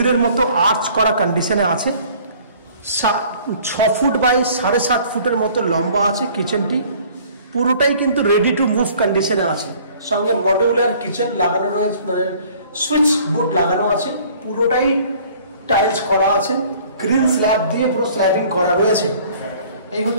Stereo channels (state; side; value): inverted; both; correlation -0.53